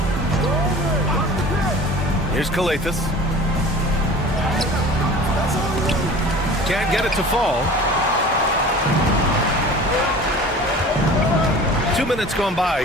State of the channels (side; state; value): both; normal; correlation 0.41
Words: Here's Kalathis. Can't get it to fall. 2 minutes gone by